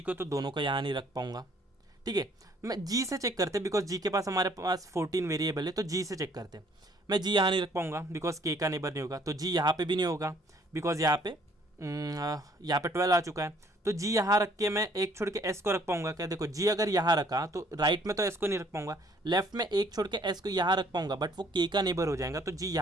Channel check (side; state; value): both; normal; correlation 0.61